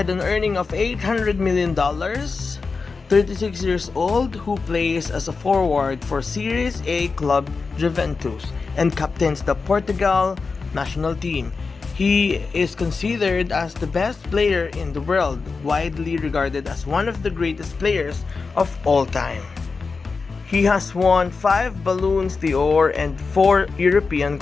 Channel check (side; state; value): right; quieter; 4.5 dB